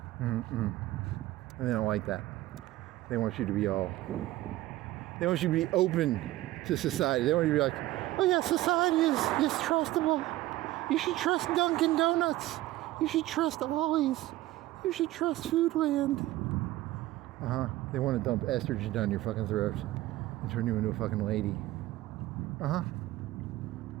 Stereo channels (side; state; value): left; quieter; 16.3 dB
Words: And they don't like that. They want you to be they want you to be open to society. They want you to be like, oh yeah, society is trustable. You should trust Dunkin' Donuts. You should trust Ollie's. You should trust Foodland. They want to dump estrogen down your fucking throat and turn you into a fucking lady.